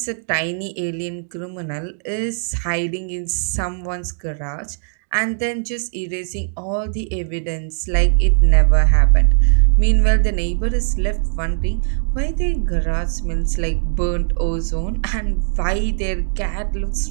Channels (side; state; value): left; silent; digital silence